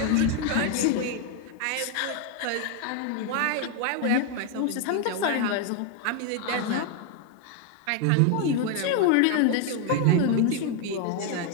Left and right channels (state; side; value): different; both; correlation 0.01